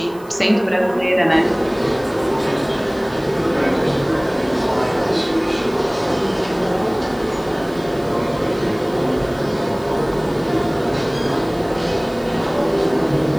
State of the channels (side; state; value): right; noise; hiss, 25 dB below the sound